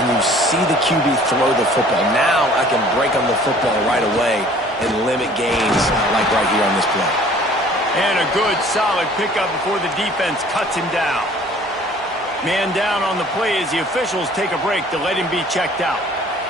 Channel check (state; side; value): normal; both; correlation 0.52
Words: you see the QB throw the football. Now I can break on the football right away and limit gains like right here on this play. And a good, solid pickup before the defense cuts him down. Man down on the play as the officials take a break to let him be checked out.